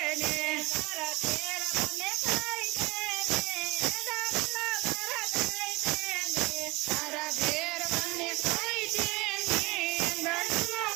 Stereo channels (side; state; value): left; quieter; 23.7 dB